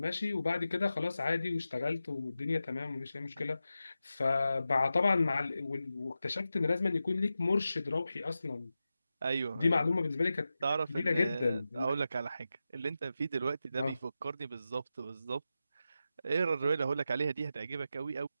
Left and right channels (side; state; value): both; inverted; correlation -0.91